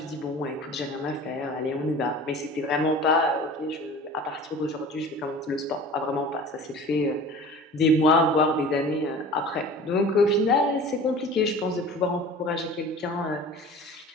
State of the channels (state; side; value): normal; both; correlation 0.40